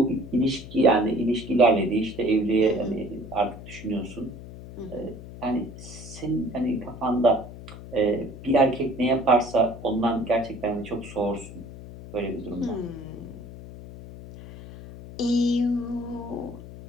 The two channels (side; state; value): left; noise; hum, 14 dB below the sound